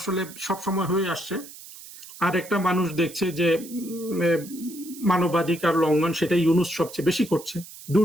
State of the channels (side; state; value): right; noise; hiss, 16 dB below the sound